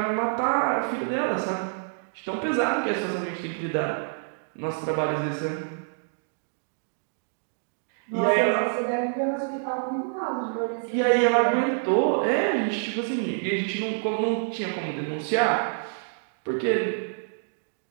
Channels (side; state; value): left; silent; digital silence